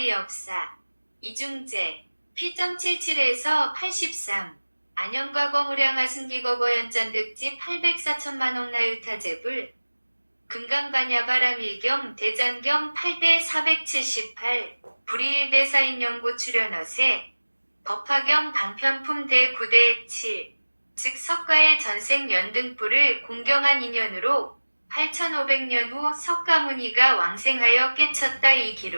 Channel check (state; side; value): inverted; both; correlation -1.00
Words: 역사 이중제 P.77에서 83 안영과거무량하승기거거연전득지 804천만억 나유타제불 금강반야바라밀경 대장경 8대 478 불이일대사인연고 출연어세 법화경 방편품 대 9대 7 즉 석가의 전생 연등불을 공경한 인연으로 8500년 후 석가모니가 왕생하여 깨쳤다. 이